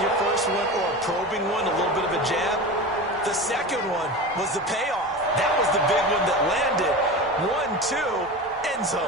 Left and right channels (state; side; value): normal; both; correlation 0.28